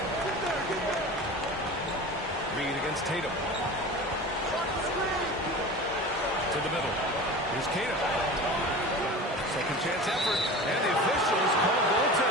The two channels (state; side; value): normal; both; correlation 0.34